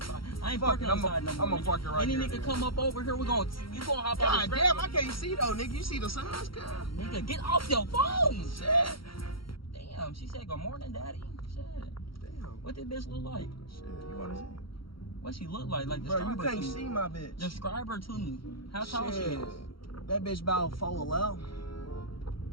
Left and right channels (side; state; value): right; late; 0.74 ms